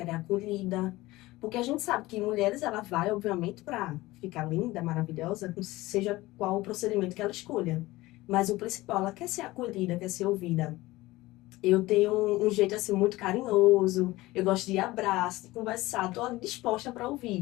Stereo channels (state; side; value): quieter; right; 18.9 dB